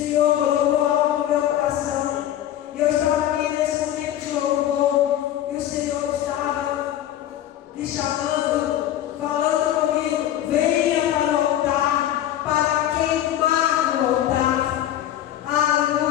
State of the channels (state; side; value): quieter; right; 12.0 dB